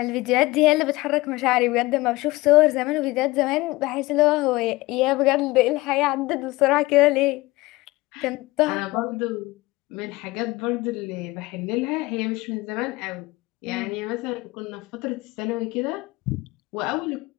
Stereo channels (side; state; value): right; quieter; 20.6 dB